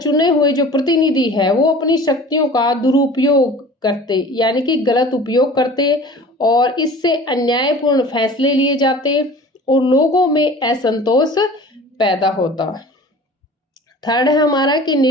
हुए जो प्रतिनिधि है वो अपनी शक्तियों का दुरुपयोग करते यानी कि गलत उपयोग करते और इससे अन्यायपूर्ण फैसले लिए जाते और लोगों में असंतोष पैदा होता। थर्ड है हमारा कि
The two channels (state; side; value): normal; both; correlation 0.42